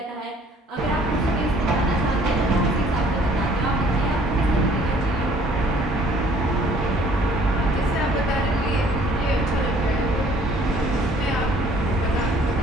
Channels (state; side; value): normal; both; correlation 0.57